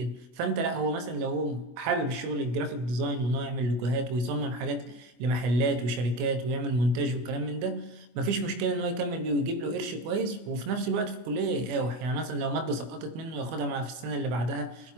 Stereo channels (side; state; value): left; late; 24 ms